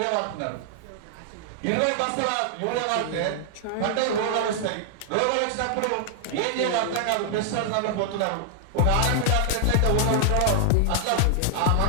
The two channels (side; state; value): both; different; correlation 0.00